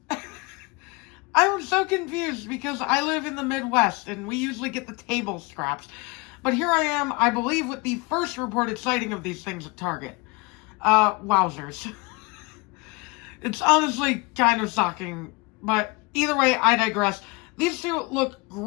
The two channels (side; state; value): right; quieter; 25.9 dB